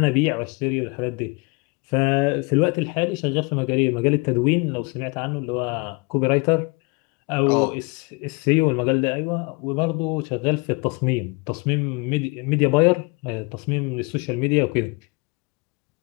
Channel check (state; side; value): quieter; right; 29.1 dB